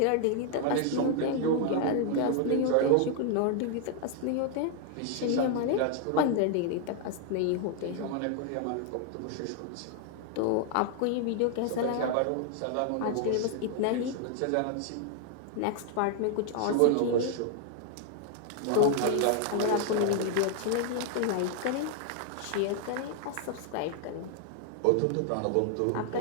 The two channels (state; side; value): different; both; correlation 0.00